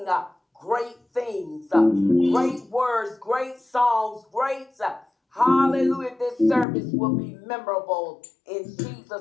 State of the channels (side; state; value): right; drops out; at 6.7 s